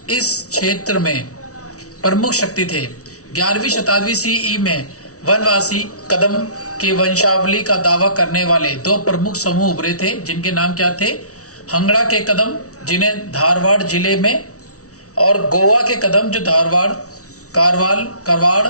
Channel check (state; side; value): late; right; 0.66 ms